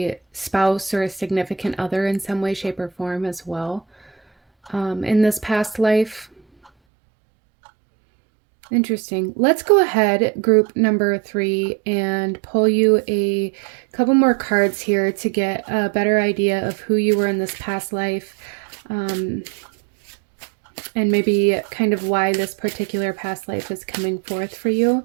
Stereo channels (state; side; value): drops out; left; at 6.7 s